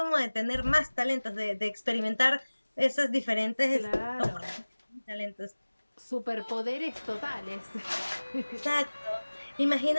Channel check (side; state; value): both; inverted; correlation -1.00